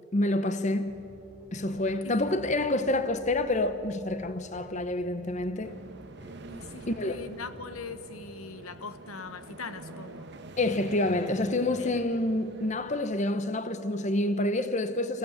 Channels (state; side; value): normal; both; correlation 0.40